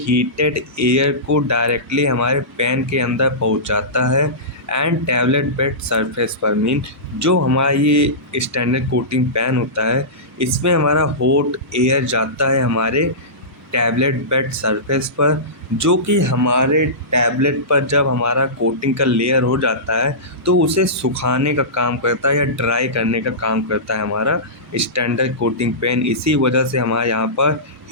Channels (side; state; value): both; normal; correlation -0.19